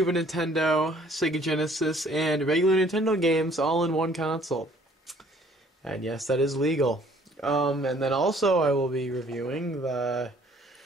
Nintendo, Sega Genesis, and regular Nintendo games all in one console. And yes, that is legal. And then also I will be reviewing the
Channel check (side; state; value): both; normal; correlation 0.58